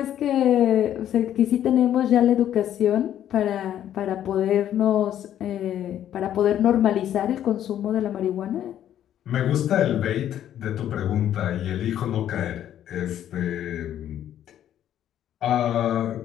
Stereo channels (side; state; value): right; quieter; 11.0 dB